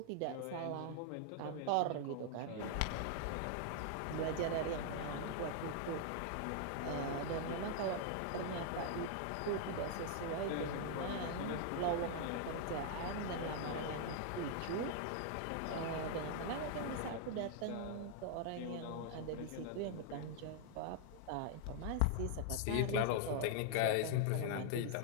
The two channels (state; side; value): different; both; correlation 0.00